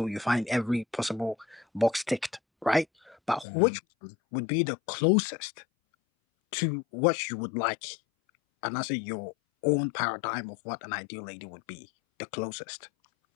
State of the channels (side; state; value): right; drops out; at 3.5 s